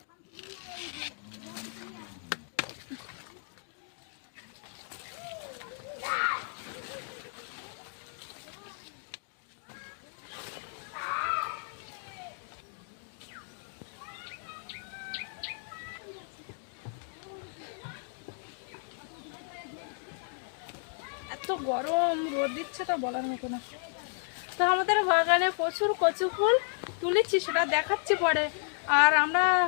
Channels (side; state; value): right; silent; 56 dB below the other